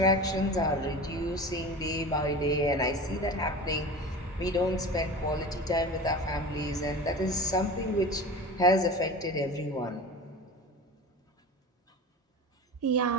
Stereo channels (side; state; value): both; normal; correlation 0.33